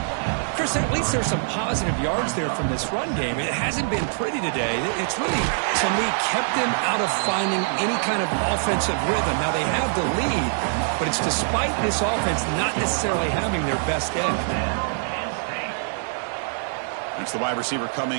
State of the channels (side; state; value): left; silent; digital silence